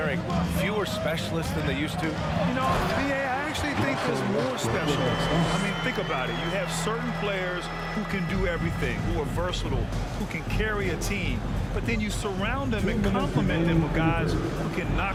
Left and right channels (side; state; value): both; identical; correlation 1.00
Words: fewer specialists than they used to? You know, VA, I actually think there's more specialists. I mean, think about it. You have certain players who can do everything, who are versatile, who can carry a team. But then you surround them and complement them with guys who can